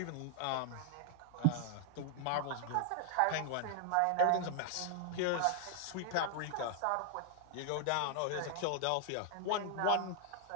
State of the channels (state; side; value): different; both; correlation 0.00